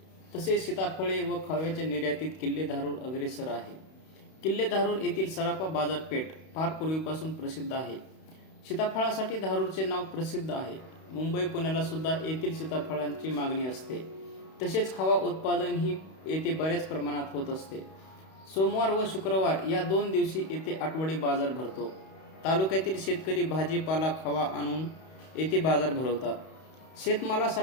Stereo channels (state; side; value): late; right; 31 ms